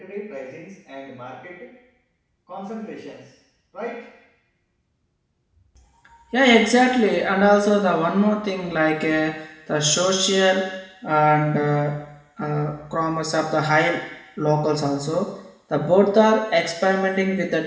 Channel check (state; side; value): identical; both; correlation 1.00